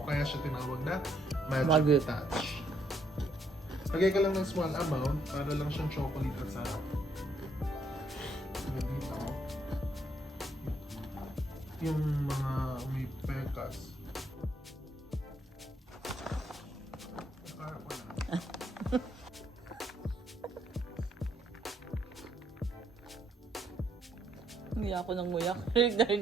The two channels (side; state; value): both; normal; correlation 0.72